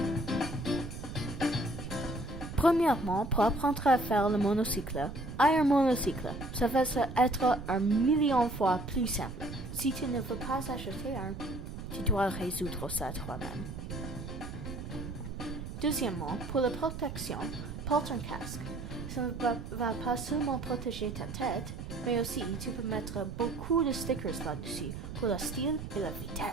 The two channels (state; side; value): noise; right; rumble, 9 dB below the sound